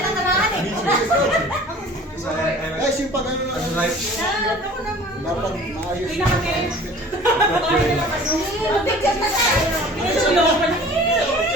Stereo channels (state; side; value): normal; both; correlation 0.46